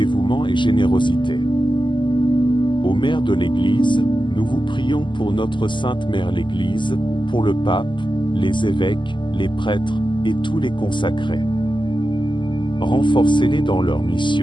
et générosité. Ô Mère de l'Église, nous vous prions pour notre Sainte Mère l'Église, pour le pape, les évêques, les prêtres, et tous les consacrés. Renforcez-les dans leur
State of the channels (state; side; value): late; right; 0.23 ms